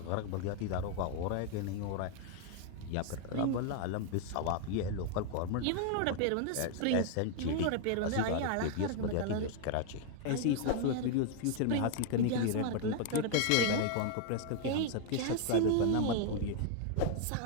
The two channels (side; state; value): both; different; correlation 0.00